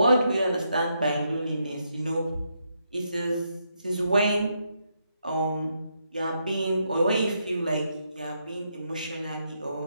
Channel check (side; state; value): both; inverted; correlation -0.79